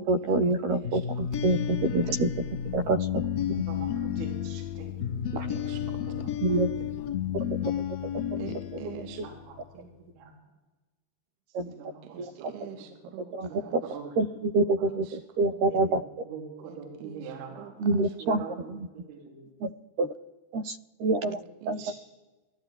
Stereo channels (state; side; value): late; left; 13 ms